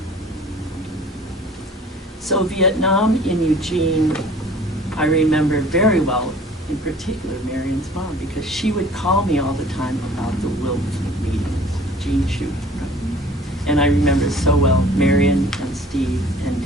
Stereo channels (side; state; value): both; normal; correlation 0.50